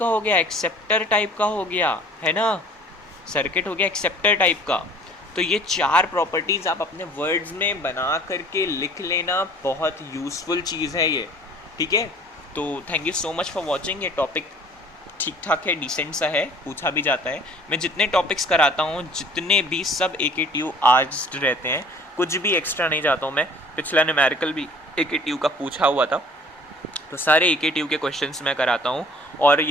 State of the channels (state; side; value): normal; both; correlation 0.50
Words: हो गया, एक्सेप्टर टाइप का हो गया है ना, सर्किट हो गया एक्सेप्टर टाइप का। तो ये 4 प्रॉपर्टीज़ आप अपने वर्ड्स में बना करके लिख लेना, बहुत यूज़फुल चीज़ है ये, ठीक है। तो thank you so much for watching. ये टॉपिक ठीक ठाक है, डिसेंट सा है, पूछा भी जाता है। मैं जितने टॉपिक्स कराता हूँ जितने भी सब AKTU आर्ट्स रहते हैं, कुछ भी एक्स्ट्रा नहीं जाता हूँ मैं। पिछला न्यूमेरिकल भी AKTU का पूछा हुआ था, तो सारे AKTU के क्वेश्चंस मैं कराता हूँ। और